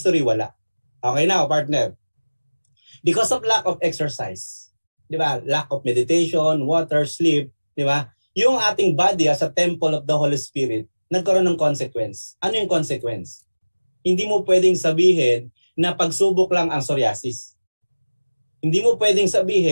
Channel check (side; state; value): both; inverted; correlation -1.00